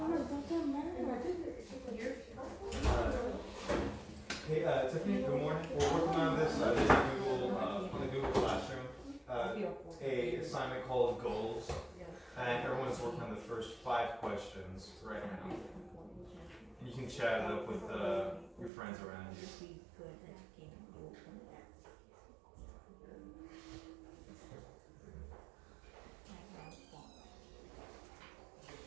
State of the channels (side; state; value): left; drops out; at 18.7 s